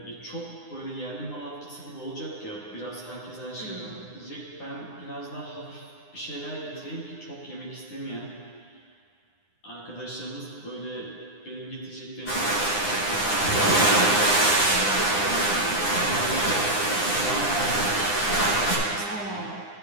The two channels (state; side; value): late; right; 9.8 ms